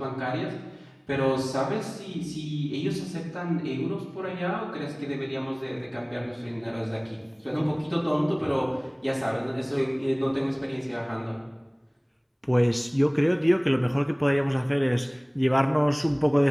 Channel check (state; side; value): identical; both; correlation 1.00